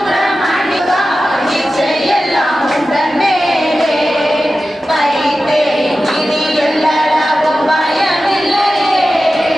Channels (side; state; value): both; normal; correlation 0.93